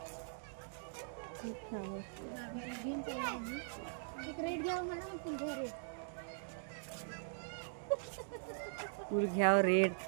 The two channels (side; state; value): left; silent; digital silence